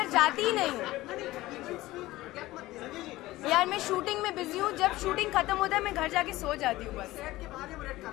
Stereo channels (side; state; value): right; quieter; 17.7 dB